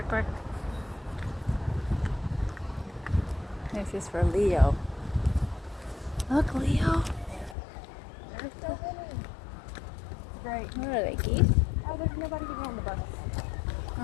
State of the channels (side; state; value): right; drops out; at 7.6 s